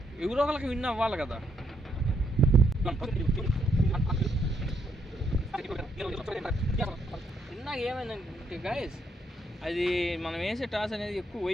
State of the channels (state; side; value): normal; both; correlation 0.75